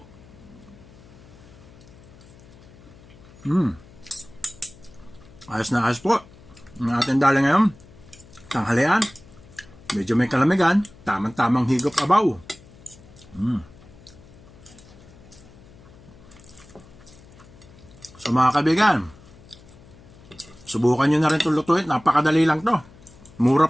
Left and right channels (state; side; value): noise; left; hum, 22 dB below the sound